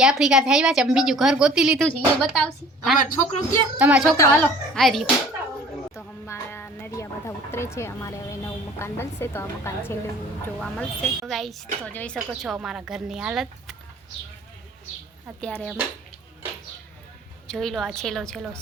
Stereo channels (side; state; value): both; normal; correlation 0.49